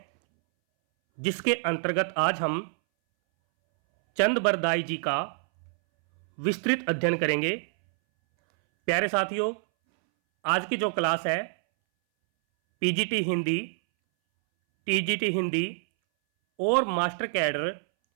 जिसके अंतर्गत आज हम चंद बरदाई जी का विस्तृत अध्ययन करेंगे। प्यारे साथियों, आज की जो क्लास है पीजीटी हिंदी, टीजीटी हिंदी और मास्टर कैडर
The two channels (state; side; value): silent; left; 60 dB below the other